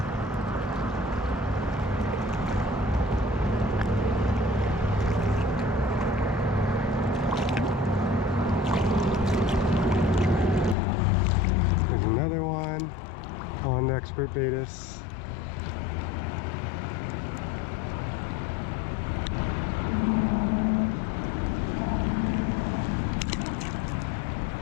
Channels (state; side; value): drops out; right; at 10.8 s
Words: Another one on expert betas.